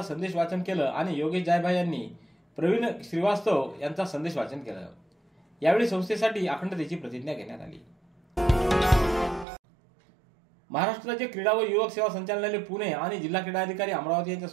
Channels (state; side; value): drops out; left; at 9.5 s